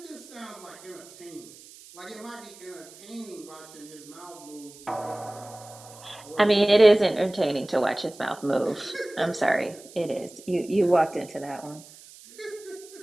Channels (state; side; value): noise; right; hiss, 20 dB below the sound